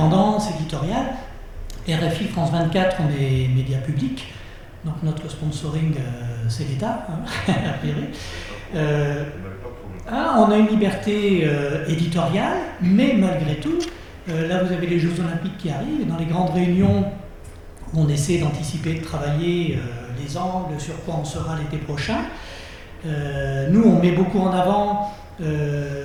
éditoriale. RFI, France 24, on est média public, donc notre sponsoring, c'est l'État, hein, a priori. On a une liberté éditoriale, mais malgré tout, là vous avez les Jeux Olympiques qui arrivent, et dans les grandes réunions où on essaie d'anticiper, de travailler les angles, sur quoi on sera l'été prochain, nous on met beaucoup en avant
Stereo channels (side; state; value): both; identical; correlation 1.00